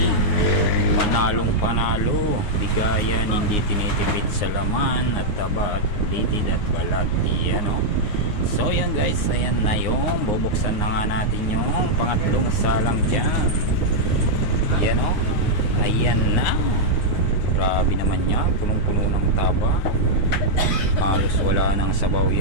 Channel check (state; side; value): late; right; 9.7 ms